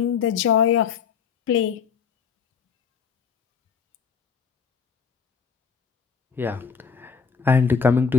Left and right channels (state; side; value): quieter; right; 6.3 dB